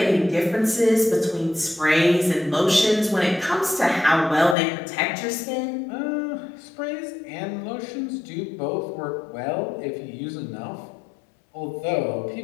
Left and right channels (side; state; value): right; drops out; at 4.5 s